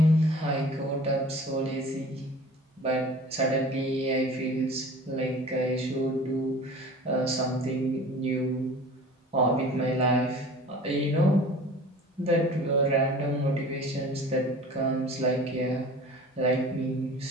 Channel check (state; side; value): normal; both; correlation 0.43